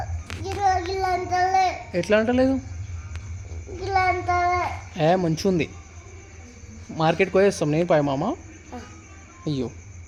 ఎట్లా అంటలేదు మంచిగా ఉంది. మార్కెట్కి పోయేస్తాం నేను పై మామ. అయ్యో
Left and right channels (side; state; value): both; identical; correlation 1.00